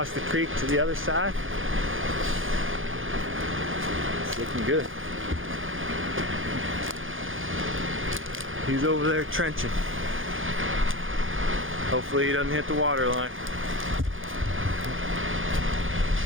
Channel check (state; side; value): late; left; 0.58 ms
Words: the creek to the other side. It's looking good. He's over there trenching. Hopefully he doesn't hit the water line.